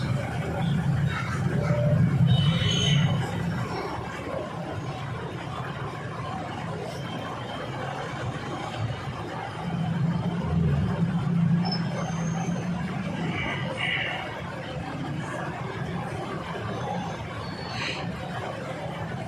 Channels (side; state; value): both; identical; correlation 1.00